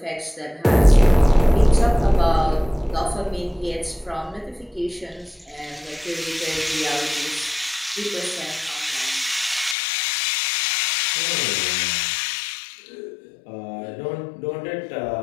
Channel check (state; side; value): drops out; right; at 9.8 s